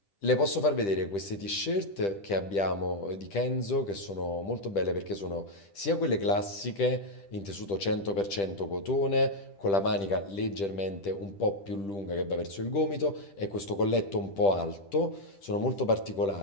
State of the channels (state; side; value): late; right; 10 ms